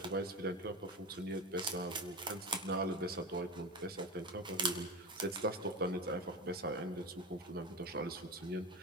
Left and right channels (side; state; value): both; normal; correlation 0.23